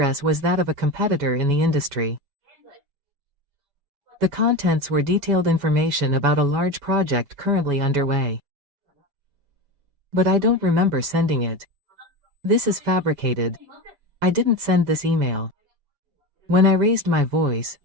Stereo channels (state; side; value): late; left; 7.1 ms